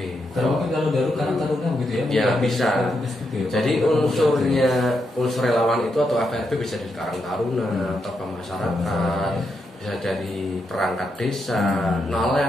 Mungkin kalau Karang Taruna begitu ya? Ya bisa. Jadi unsur relawan itu atau FPRB bisa dari Karang Taruna atau masyarakat, bisa dari perangkat desa,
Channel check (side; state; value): both; normal; correlation 0.82